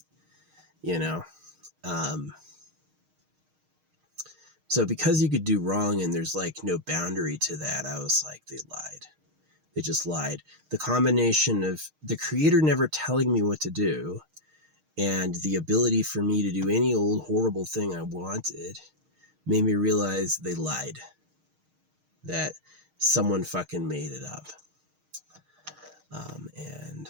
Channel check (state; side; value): late; left; 6.5 ms